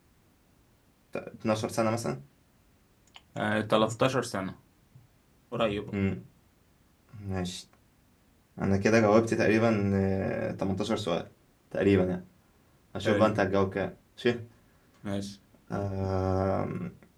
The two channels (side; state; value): both; identical; correlation 1.00